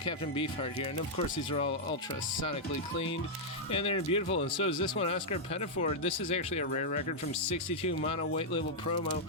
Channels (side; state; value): both; normal; correlation -0.05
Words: Beefheart here, and of course these are all ultra-sonically cleaned, and they're beautiful, and so is this one, Oscar Pettiford. This is actually a rare record from 62, mono white label promo,